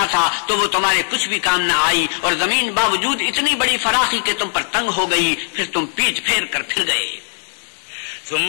تھا تو وہ تمہارے کچھ بھی کام نہ آئی، اور زمین باوجود اتنی بڑی فراخی کہ تم پر تنگ ہو گئی، پھر تم پیٹ پھیر کر پھر گئے.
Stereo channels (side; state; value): right; silent; 67 dB below the other